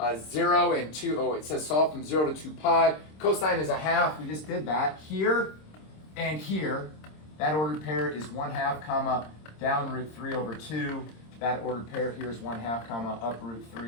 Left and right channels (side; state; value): right; late; 26 ms